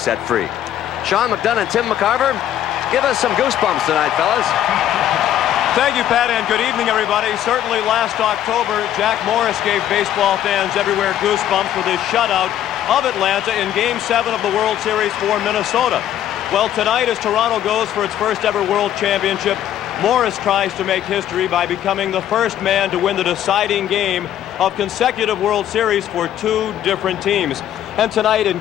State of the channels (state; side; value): quieter; right; 11.3 dB